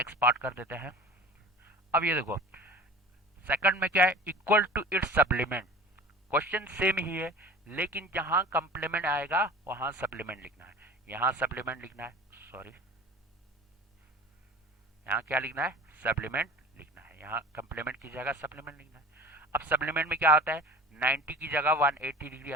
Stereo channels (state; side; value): normal; both; correlation 0.39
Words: पार्ट कर देते हैं। अब ये देखो सेकंड में क्या है, equal to its supplement. Question same ही है लेकिन जहां कंप्लीमेंट आएगा वहां सप्लीमेंट लिखना है। यहां सप्लीमेंट लिखना है, सॉरी यहाँ क्या लिखना है सप्लीमेंट लिखना है, यहाँ कंप्लीमेंट की जगह सप्लीमेंट लिखना है। अब सप्लीमेंट में क्या होता है 90 की जगह 180 डिग्री